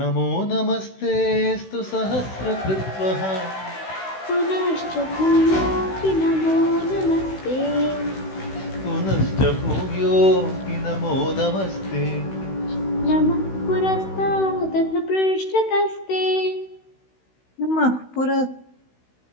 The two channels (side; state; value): right; late; 16 ms